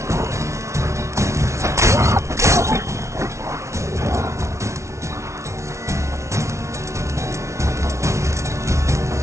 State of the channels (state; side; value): late; left; 0.14 ms